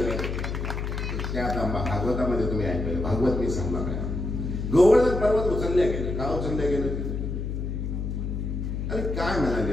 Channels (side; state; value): left; noise; hum, 3 dB below the sound